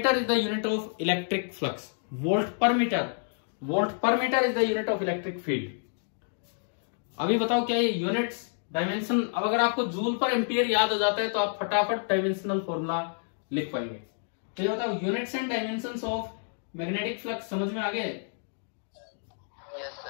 is the unit of electric flux. Volt per metre, volt per metre is the unit of electric field. अभी बताओ क्या ये यूनिट्स, डायमेंशन, अब अगर आपको जूल पर एम्पियर याद हो जाता है तो आप फटाफट डायमेंशनल फॉर्मूला लिख पाएंगे। तो ये बताओ units and dimensions of magnetic flux समझ में आ गए?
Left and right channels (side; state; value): right; silent; digital silence